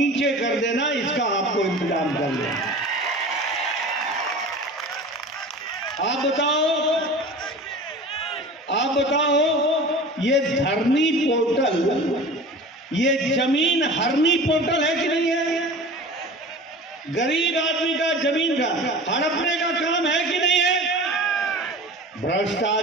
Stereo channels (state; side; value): normal; both; correlation 0.38